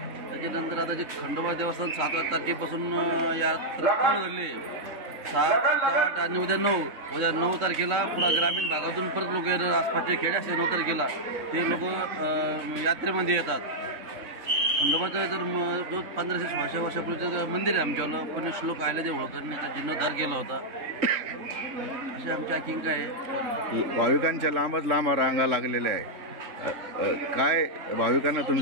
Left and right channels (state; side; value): late; left; 3.6 ms